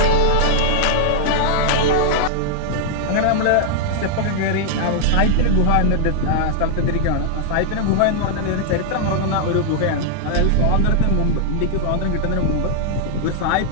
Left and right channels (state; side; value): different; both; correlation -0.01